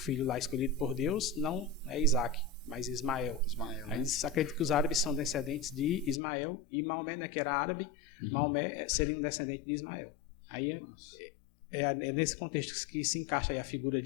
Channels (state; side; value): drops out; right; at 6.2 s